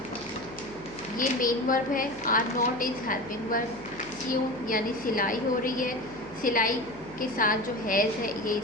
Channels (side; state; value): left; noise; hum, 21 dB below the sound